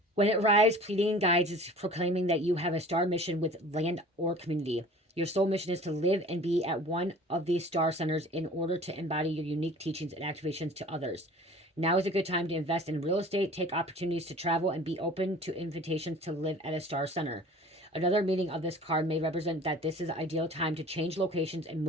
When it arrives, pleading guides is proclaiming that you have a star mission with land or community. Your soul mission is to live and be at one of these star centers in order to embody your unique teachings and activations to others. Now is a good time to invest in real estate, take opportunities to travel, and be open to invitations to live at a star center. Another meaning of this card may represent that this is an ideal time to change locations and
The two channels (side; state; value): both; normal; correlation 0.45